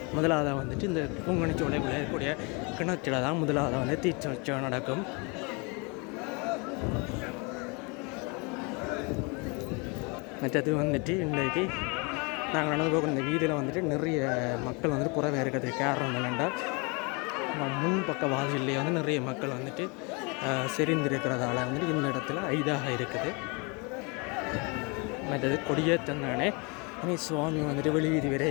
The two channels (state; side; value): quieter; right; 30.8 dB